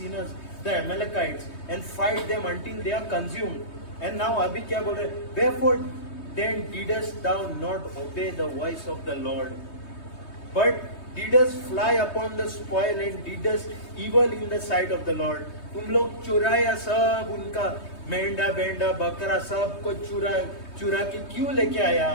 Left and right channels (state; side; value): late; right; 3.2 ms